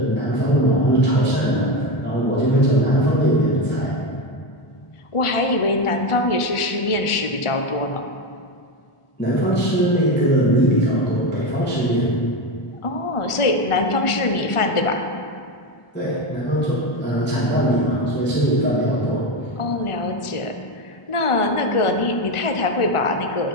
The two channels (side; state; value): right; late; 1.4 ms